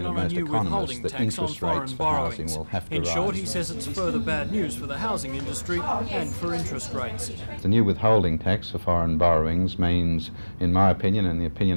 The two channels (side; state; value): both; inverted; correlation -1.00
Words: opinion of on a most new withholding economists, that tax on interest rates foreign for housing borrowings. will have to In rise. short, he says it's further bad news for the housing industry and for interest rates. The new withholding tax for foreign borrowings means, in my opinion and the